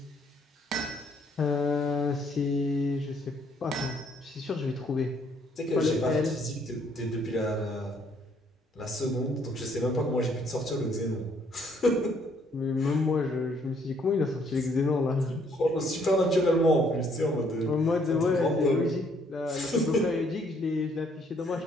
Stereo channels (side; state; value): both; normal; correlation 0.66